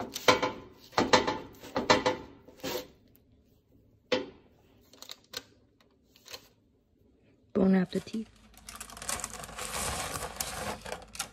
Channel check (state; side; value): identical; both; correlation 1.00